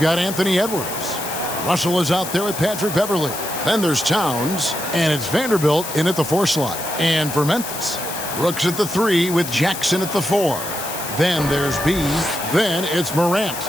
got Anthony Edwards. Russell is out there with Patrick Beverley. Then there's Towns, and it's Vanderbilt in at the 4 slot. And for Memphis, Brooks at the 3 with Jackson at the 4. Then there's B. Then it's Morant.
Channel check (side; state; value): left; noise; hiss, 8 dB below the sound